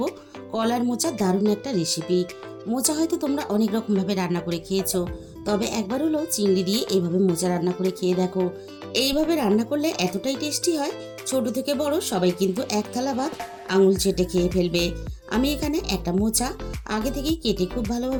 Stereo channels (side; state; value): both; identical; correlation 1.00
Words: কলার মোচার দারুণ একটা রেসিপি। মোচা হয়তো তোমরা অনেক রকমভাবে রান্না করে খেয়েছো, তবে একবার হলো চিংড়ি দিয়ে এইভাবে মোচা রান্না করে খেয়ে দেখো। এইভাবে রান্না করলে এতটাই টেস্টি হয়, ছোট থেকে বড় সবাই কিন্তু এক থালা ভাত আঙুল চেটে খেয়ে ফেলবে। আমি এখানে একটা মোচা আগে থেকেই কেটে খুব